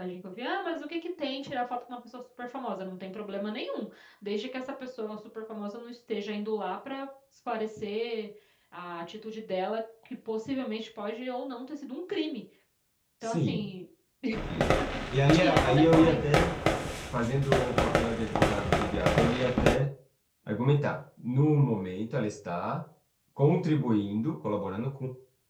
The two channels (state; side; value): identical; both; correlation 1.00